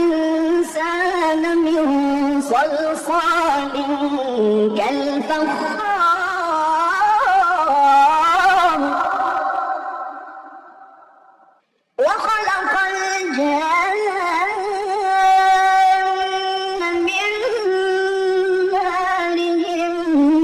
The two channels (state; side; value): identical; both; correlation 1.00